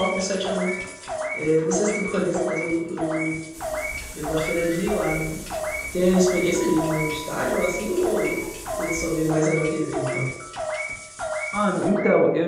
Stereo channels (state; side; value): identical; both; correlation 1.00